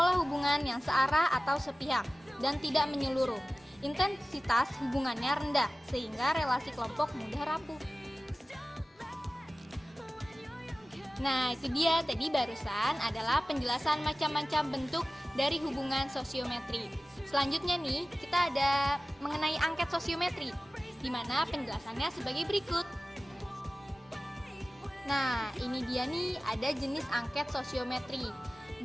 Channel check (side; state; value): both; normal; correlation 0.97